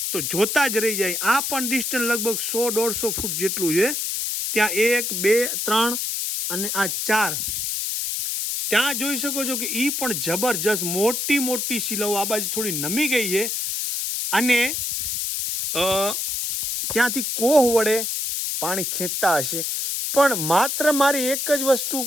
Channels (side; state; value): left; noise; hiss, 1 dB below the sound